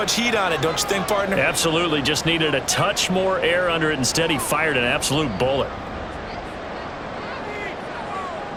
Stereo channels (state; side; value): identical; both; correlation 1.00